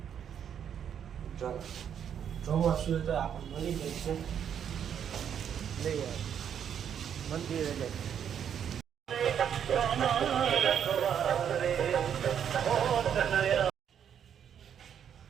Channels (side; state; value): left; quieter; 8.6 dB